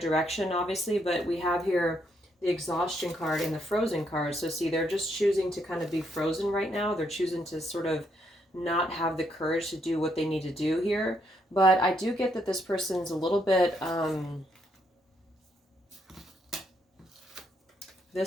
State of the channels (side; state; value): both; normal; correlation 0.75